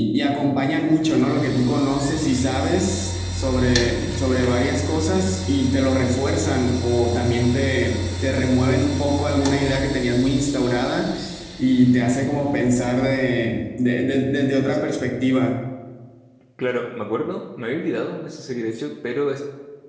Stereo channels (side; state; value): both; identical; correlation 1.00